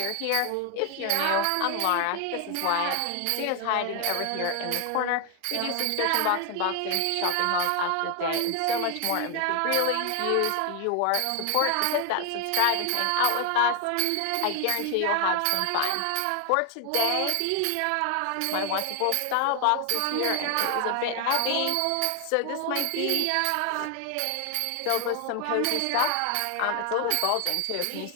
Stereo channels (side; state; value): both; different; correlation 0.00